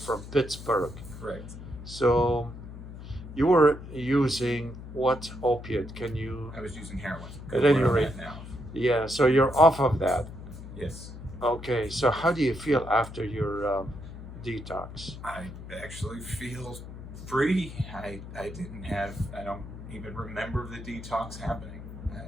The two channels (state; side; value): noise; left; hum, 12 dB below the sound